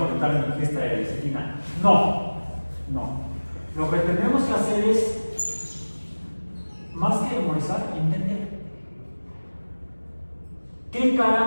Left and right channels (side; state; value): both; inverted; correlation -1.00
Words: en mi fiesta de lecitina. No. Lo que tenemos que hacer es, más que memorizar, entender. ¿Qué